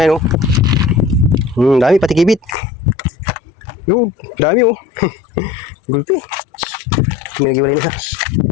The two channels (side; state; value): right; drops out; at 2.6 s